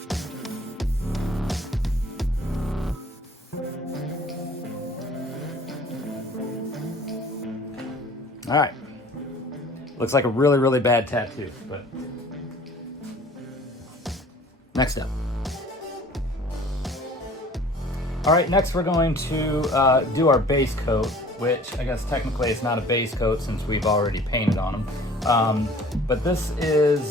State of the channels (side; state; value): both; normal; correlation 0.49